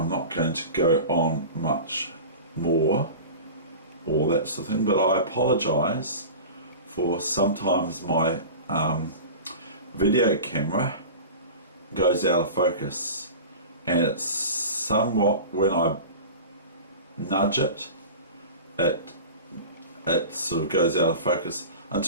not going to go on much more, all that sort of thing, but I apologise for sometimes my video camera goes out of focus, and it's somewhat, when I nudge it, it sort of goes out of focus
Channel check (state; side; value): inverted; both; correlation -0.33